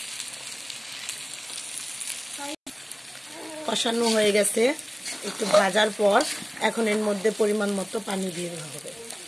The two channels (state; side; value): identical; both; correlation 1.00